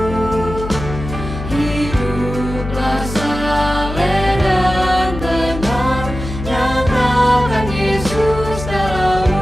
hiduplah saleh dan benar, nyatakan Yesus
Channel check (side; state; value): left; noise; hum, 8 dB below the sound